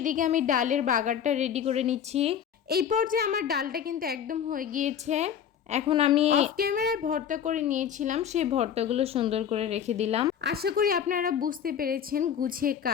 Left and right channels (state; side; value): quieter; right; 8.6 dB